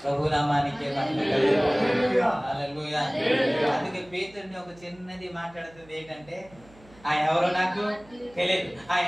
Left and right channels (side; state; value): right; noise; hum, 25 dB below the sound